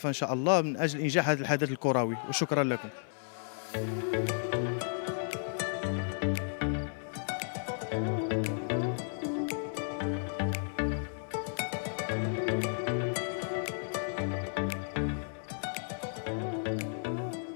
ان شاء الله من اجل انجاح هذا الحدث الكروي، وشكرا لكم.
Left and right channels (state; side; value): silent; right; 56 dB below the other